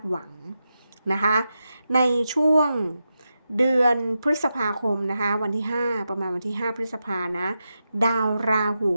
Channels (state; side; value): inverted; both; correlation -0.89